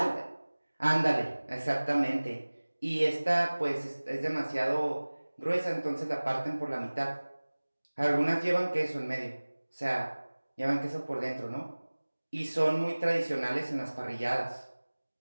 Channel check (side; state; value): both; inverted; correlation -1.00